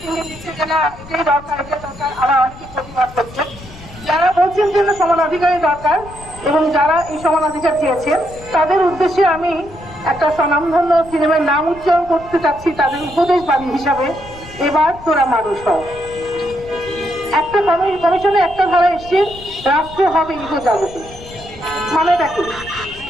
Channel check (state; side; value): noise; left; rumble, 18 dB below the sound